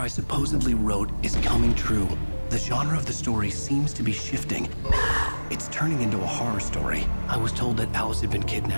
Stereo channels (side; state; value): both; inverted; correlation -1.00